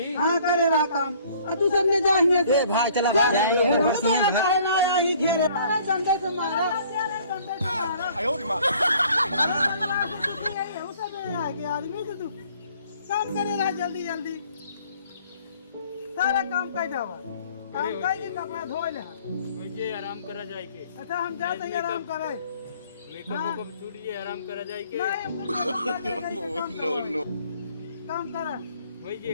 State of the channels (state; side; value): inverted; both; correlation -0.57